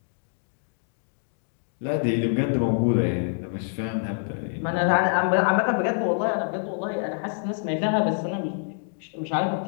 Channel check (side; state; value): right; silent; digital silence